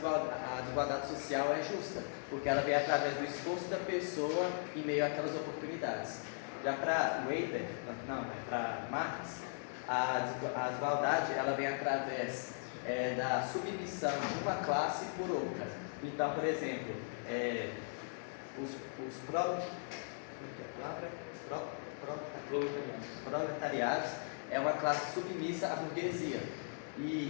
desigualdade social é justa, porque ela vem através do esforço da pessoa em meio àquelas oportunidades. Já para Weber, para Marx, a desigualdade ela vem através da submissão de uma classe por outra. Então, por exemplo, os proletariados é uma classe submissa à burguesia.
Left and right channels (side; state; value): right; silent; digital silence